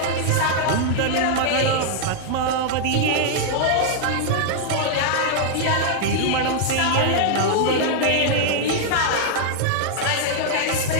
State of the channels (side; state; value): both; different; correlation -0.01